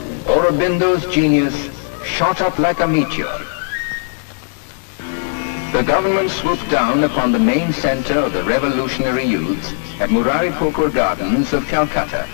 Aurobindo's genius shot up like a meteor. The government swooped down upon the main center of the revolutionary youths at Murari Pukur Gardens of Calcutta,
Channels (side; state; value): right; silent; 68 dB below the other